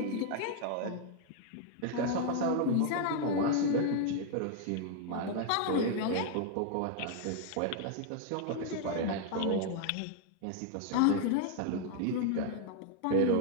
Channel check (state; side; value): different; both; correlation 0.00